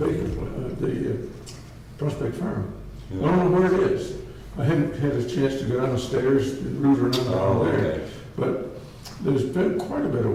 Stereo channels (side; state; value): both; identical; correlation 1.00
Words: Prospect Farm. I don't know where it is. I hadn't had a chance to go downstairs and root around Oh, down there. okay. But there's been quite a bit of